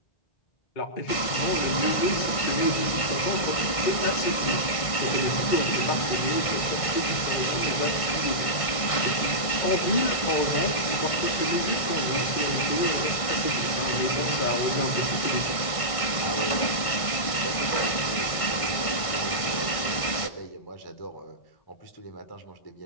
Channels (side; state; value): right; late; 1.5 ms